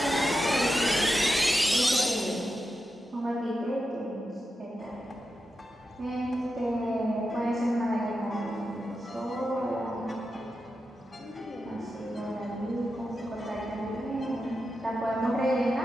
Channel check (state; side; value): normal; both; correlation 0.89